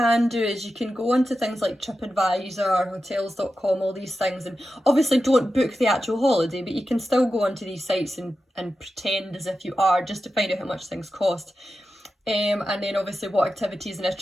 do is you can go onto things like TripAdvisor, hotels.com, all these things, and obviously don't book the actual holiday, but you can still go onto these sites and pretend as if you are, just to find out how much things cost. And then obviously what activities and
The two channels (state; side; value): normal; both; correlation 0.91